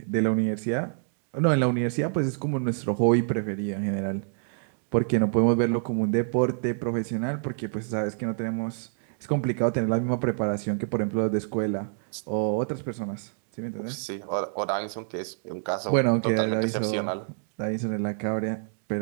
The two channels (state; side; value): silent; left; digital silence